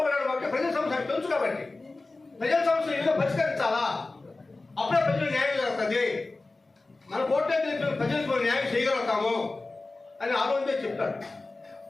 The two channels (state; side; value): quieter; right; 3.3 dB